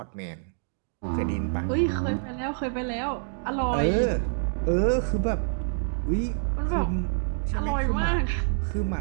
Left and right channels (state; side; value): silent; left; digital silence